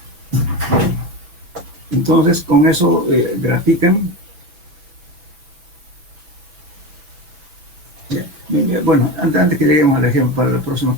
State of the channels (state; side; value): late; left; 5.9 ms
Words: Entonces, con eso grafican. Bueno, antes que lleguemos al ejemplo, para la próxima